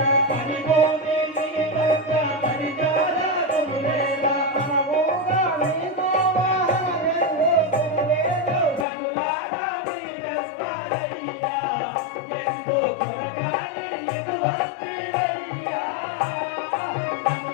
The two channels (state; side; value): drops out; right; at 8.8 s